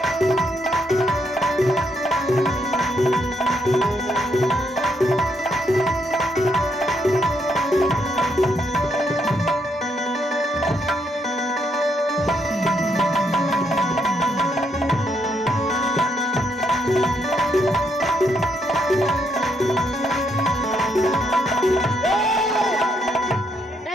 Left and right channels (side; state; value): both; normal; correlation 0.75